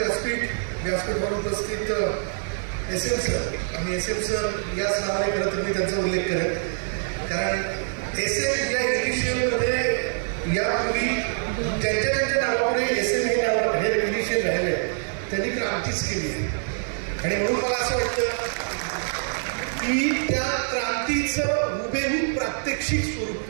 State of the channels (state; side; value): silent; left; digital silence